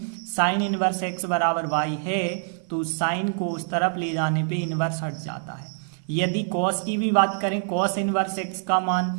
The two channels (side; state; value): left; silent; digital silence